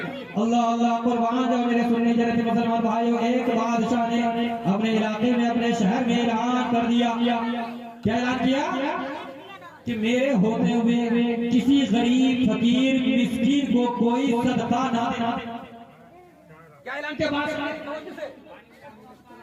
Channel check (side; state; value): both; identical; correlation 1.00